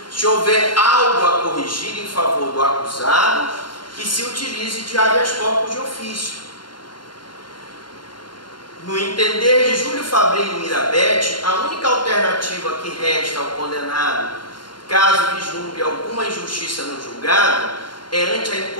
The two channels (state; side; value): late; right; 0.72 ms